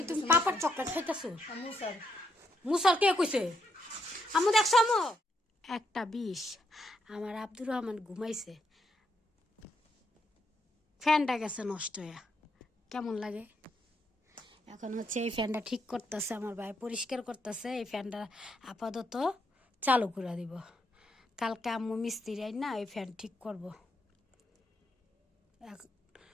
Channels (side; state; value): both; normal; correlation 0.77